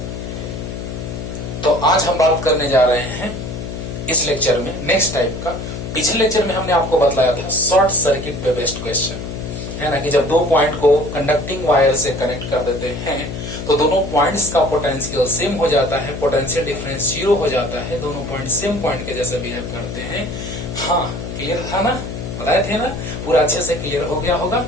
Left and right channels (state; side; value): noise; left; hum, 7 dB below the sound